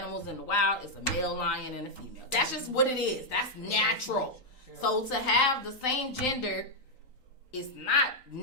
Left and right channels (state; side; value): late; right; 3.9 ms